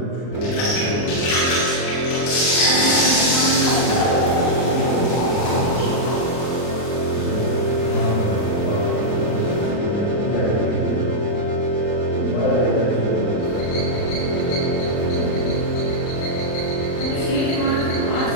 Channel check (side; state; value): right; late; 39 ms